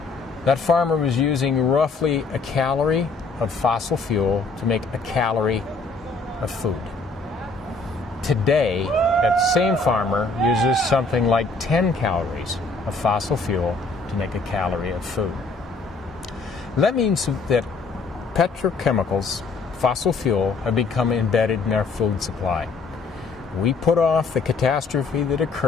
that farmer was using roughly a calorie of fossil fuel to make a calorie of food. Today, that same farmer uses something like 10 calories of fossil fuel to make a calorie of food. That means that petrochemicals, fossil fuel, have become embedded in our food supply. We put off the catastrophe that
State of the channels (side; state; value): right; quieter; 3.9 dB